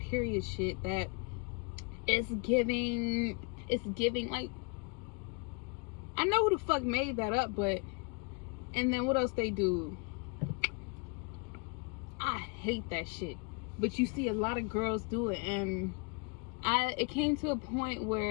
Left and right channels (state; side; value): quieter; right; 34.2 dB